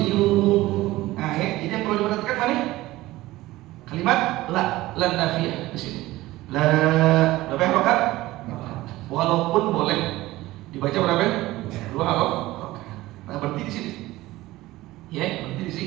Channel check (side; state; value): left; quieter; 17.7 dB